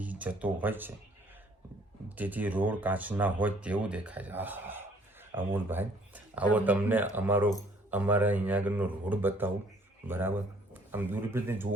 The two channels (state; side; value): normal; both; correlation 0.59